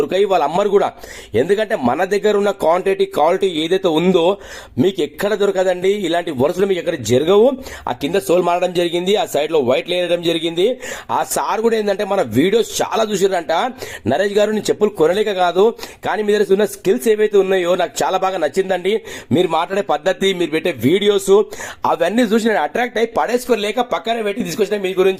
వాళ్ళు అమ్మరు కూడా. ఎందుకంటే మన దగ్గర ఉన్న క్వాలిటీ ఏదైతే ఉందో మీకు ఎక్కడ దొరకదండి. ఇలాంటి వరుసలు మీకు ఎక్కడ జరగవు. ఆ కింద సోల్ మారడం జరిగింది, ఆ సైడ్ లో వైట్ లేయడం జరిగింది. ఆ సార్ కూడా ఏంటంటే మన వీడియోస్ చాలా చూసారంట. నరేష్ గారు నేను చెప్పులు కొనలేక కాదు, కానీ మీ దగ్గర ఉన్న స్కిల్స్ ఏవైతే ఉన్నాయో నాకు చాలా బాగా నచ్చిందండి. మీరు మాట్లాడే పద్ధతి, మీరు పెట్టే వీడియోస్ అవన్నీ చూసి నేను అట్రాక్ట్ అయ్యి పడేసుకోలేక పక్కన పెట్టి తీసుకొచ్చిన మీ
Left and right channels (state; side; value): identical; both; correlation 1.00